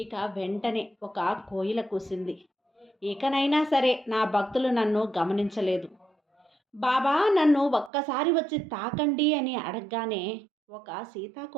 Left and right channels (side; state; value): left; drops out; at 7.9 s